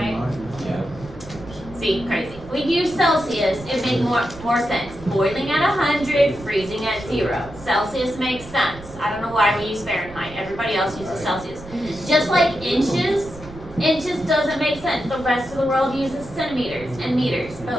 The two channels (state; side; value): noise; right; rumble, 17 dB below the sound